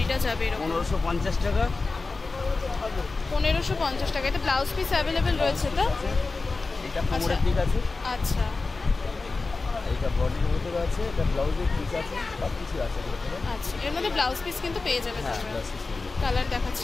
যাবে এরকম। 1550 টাকা। 1550 টাকা। এটা ব্লাউজ পিস অ্যাভেলেবেল রয়েছে তো? এটা কোমরের দিক আছে। আচ্ছা, এটা বডির ভিতরে আছে, এটা ব্লাউজের পিস আছে, সব কিছু আছে। আচ্ছা, এর মধ্যে ব্লাউজ পিস কিন্তু পেয়ে যাবে। হ্যাঁ, ব্লাউজ পিস। কালার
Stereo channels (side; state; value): right; quieter; 3.8 dB